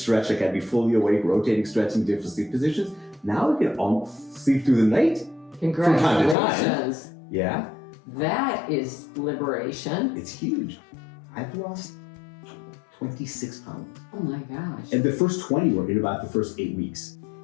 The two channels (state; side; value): drops out; right; at 6.4 s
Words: Like I'd be fully awake, rotating, stretching, different sleep positions. Now I can almost sleep through the night. Congratulations. From time to time. Yeah. That is liberation. It's huge. I've lost 26 pounds. Oh my gosh. And the first 20 were in about the first 8 weeks.